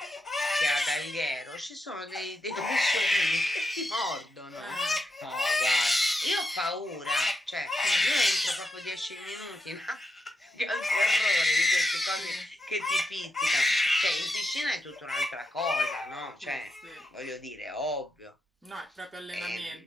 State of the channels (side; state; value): both; normal; correlation 0.85